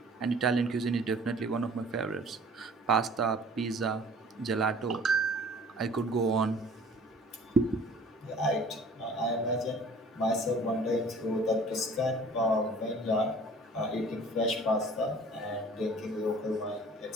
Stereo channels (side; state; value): both; normal; correlation 0.49